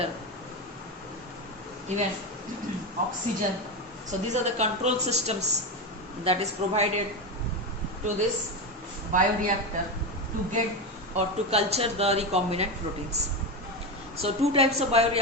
even oxygen. So these are the control systems that is provided to this bioreactor to get or to culture the recombinant proteins. So two types of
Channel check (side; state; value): both; normal; correlation 0.15